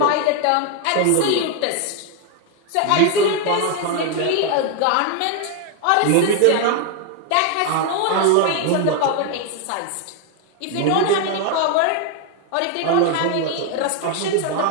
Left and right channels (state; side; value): different; both; correlation 0.01